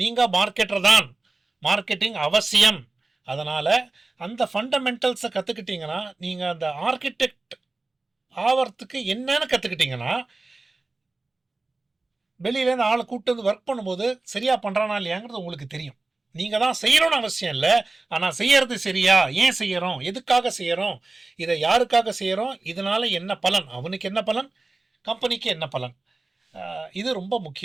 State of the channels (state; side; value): quieter; left; 3.3 dB